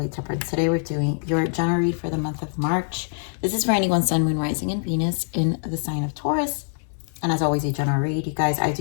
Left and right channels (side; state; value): right; silent; 59 dB below the other